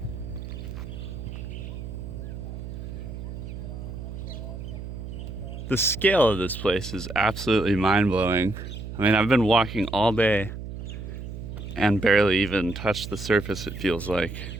The scale of this place is absolutely mind-blowing. I mean, I've been walking all day and barely even touched the surface, it feels like.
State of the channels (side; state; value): right; noise; hum, 9 dB below the sound